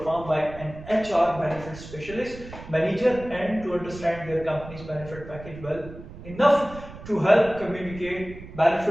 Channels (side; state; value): right; noise; rumble, 14 dB below the sound